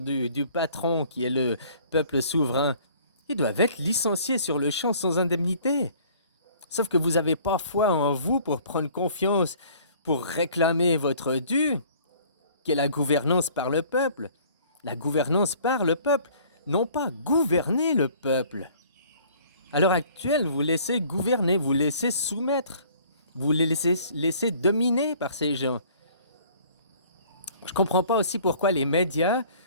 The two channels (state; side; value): inverted; both; correlation -0.54